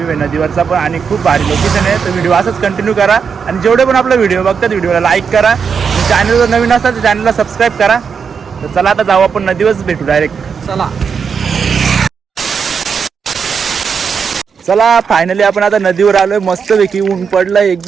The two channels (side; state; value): left; quieter; 6.3 dB